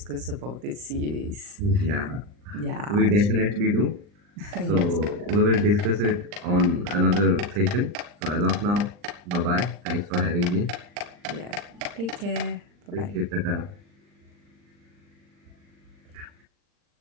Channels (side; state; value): left; late; 39 ms